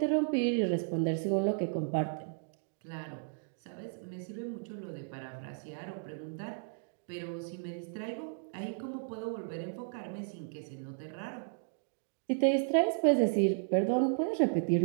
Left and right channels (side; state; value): left; silent; digital silence